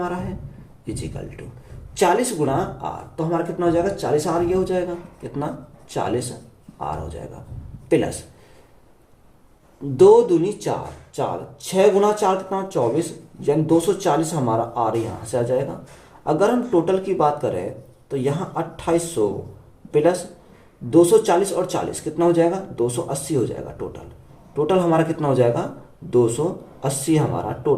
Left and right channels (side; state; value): both; identical; correlation 1.00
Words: है इजिकल टू 40 गुणा आर, तो हमारा कितना हो जाएगा 40 आर, ये हो जाएगा कितना 40 आर हो जाएगा, प्लस 2 दूनी 4, 6 गुणा 4 कितना 24, यानी 240 हमारा आर यहाँ से आ जाएगा। अगर हम टोटल की बात करें तो यहाँ 2800 प्लस 240 और 40 कितना हो जाएगा 280 हो जाएगा। टोटल हमारा कितना हो जाएगा 280 हमारा